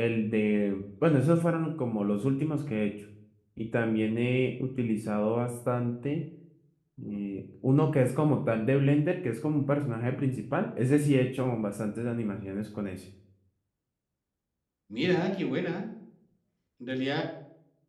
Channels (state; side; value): identical; both; correlation 1.00